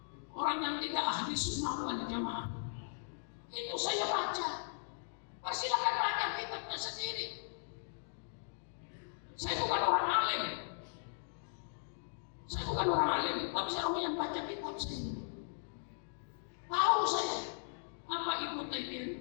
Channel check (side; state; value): right; silent; digital silence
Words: orang yang tidak ahli sunnah wal jamaah. Itu saya baca. Persilakan baca kitabnya sendiri. Saya bukan orang alim. Saya bukan orang alim, tapi saya orang yang baca kitab sendiri. Tahu saya apa Ibnu